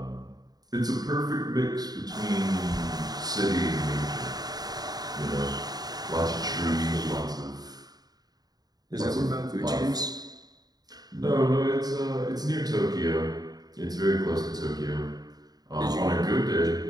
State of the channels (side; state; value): left; late; 0.19 ms